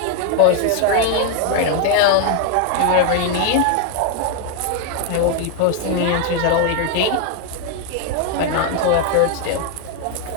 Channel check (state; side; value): different; both; correlation 0.01